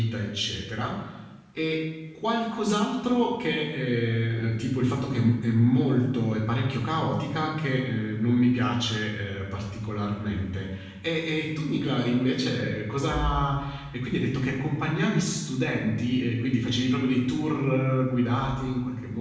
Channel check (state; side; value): identical; both; correlation 1.00